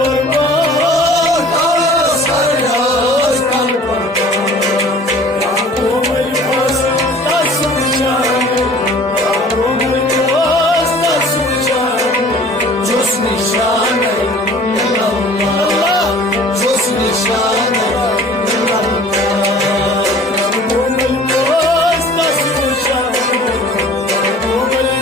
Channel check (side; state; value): both; normal; correlation 0.48